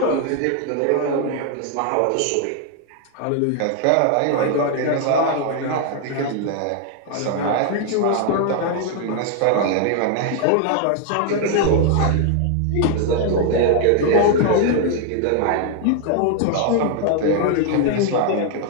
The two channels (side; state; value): both; different; correlation 0.00